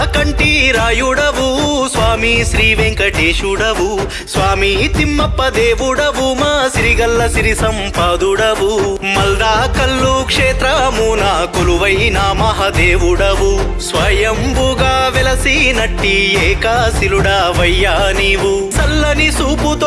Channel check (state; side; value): identical; both; correlation 1.00